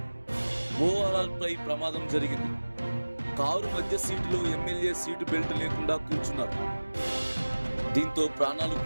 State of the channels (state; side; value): inverted; both; correlation -1.00